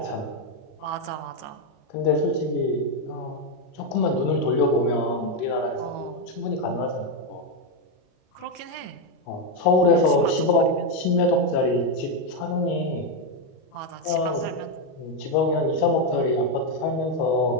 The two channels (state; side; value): late; right; 38 ms